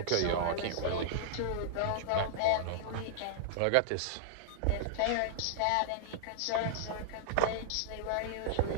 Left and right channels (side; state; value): both; different; correlation -0.01